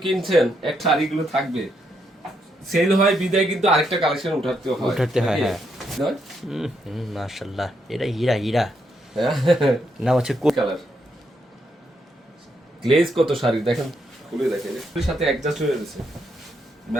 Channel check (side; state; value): both; normal; correlation 0.78